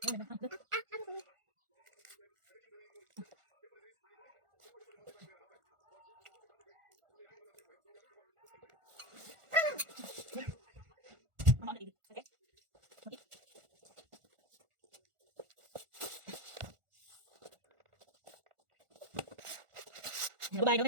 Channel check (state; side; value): late; left; 1.4 ms